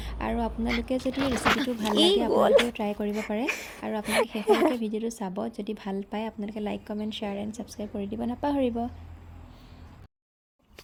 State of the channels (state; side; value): identical; both; correlation 1.00